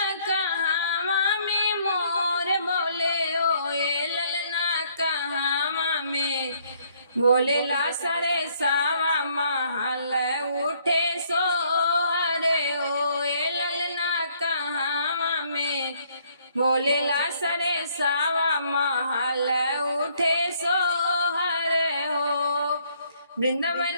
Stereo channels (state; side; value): inverted; both; correlation -0.66